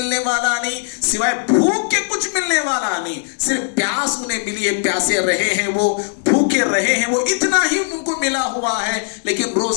والا نہیں, سوائے بھوک کے کچھ ملنے والا نہیں. صرف پیاس انہیں ملی ہے, پیاسے رہے ہیں, وہ بھوکے رہے ہیں, وہ اتنا ہی ان کو ملا ہوا ہے. لیکن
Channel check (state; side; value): silent; right; digital silence